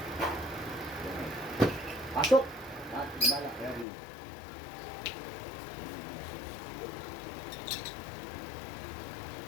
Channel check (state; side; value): drops out; right; at 3.9 s